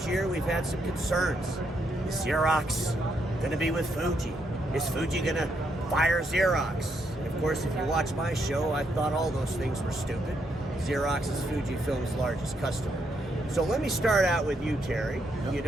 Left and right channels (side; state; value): both; normal; correlation 0.77